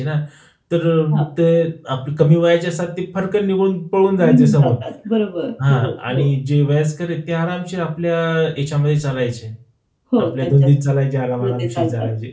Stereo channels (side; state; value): both; identical; correlation 1.00